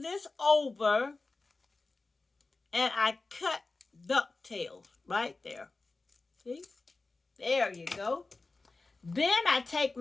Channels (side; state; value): right; quieter; 3.5 dB